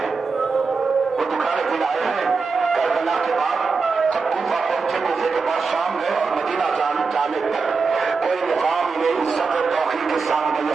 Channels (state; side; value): quieter; left; 4.7 dB